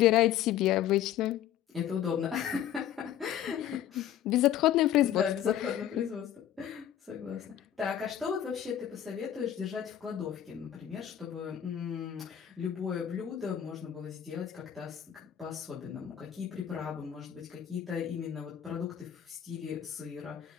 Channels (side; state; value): right; quieter; 10.6 dB